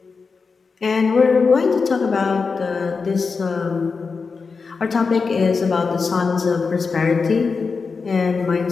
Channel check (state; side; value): quieter; right; 4.8 dB